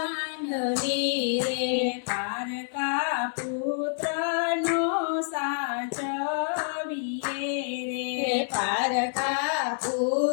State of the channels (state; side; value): silent; right; 60 dB below the other